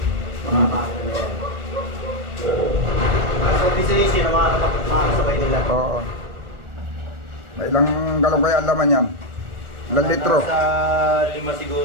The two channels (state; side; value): late; left; 1.4 ms